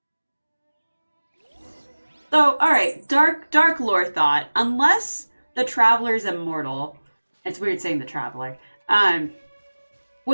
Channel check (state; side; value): inverted; both; correlation -1.00